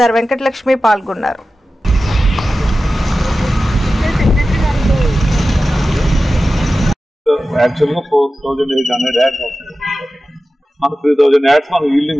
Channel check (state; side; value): normal; both; correlation 0.94